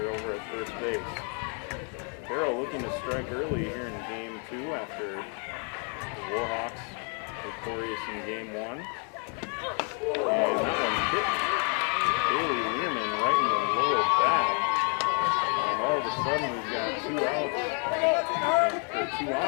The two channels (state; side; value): quieter; right; 39.5 dB